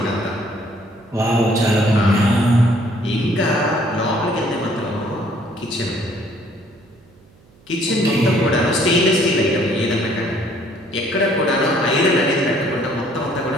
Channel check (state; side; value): noise; right; hum, 29 dB below the sound